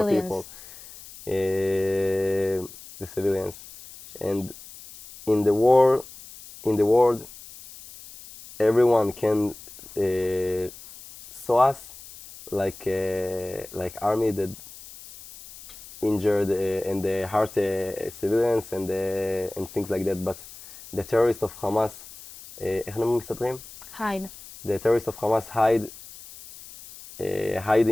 people, the civilians. And in the war, in the world, everyone can saw us like army that injured and the hurt civilians and things like that. But the terrorists of Hamas, איך הם מסתתרים? Hide. The terrorists of Hamas hide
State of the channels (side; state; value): left; noise; hiss, 17 dB below the sound